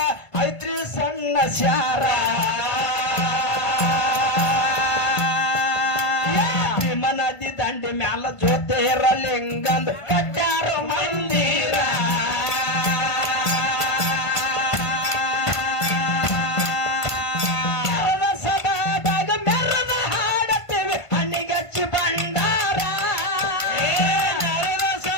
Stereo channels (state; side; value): late; right; 1.5 ms